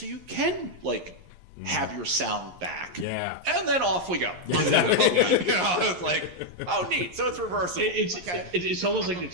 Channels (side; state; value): left; late; 11 ms